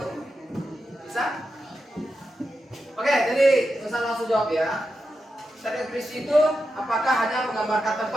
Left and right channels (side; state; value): both; normal; correlation 0.88